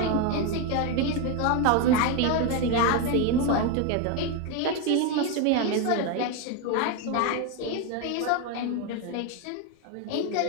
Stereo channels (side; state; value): both; different; correlation 0.02